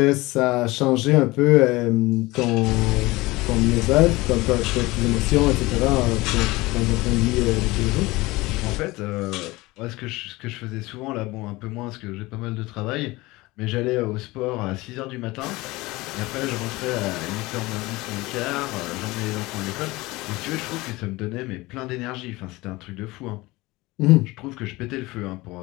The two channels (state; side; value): quieter; right; 21.1 dB